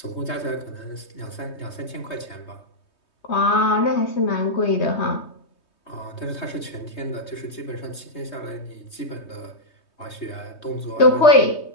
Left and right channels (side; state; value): right; late; 3.2 ms